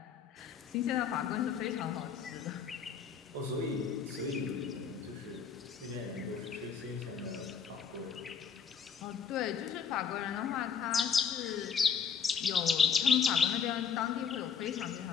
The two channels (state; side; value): quieter; right; 6.6 dB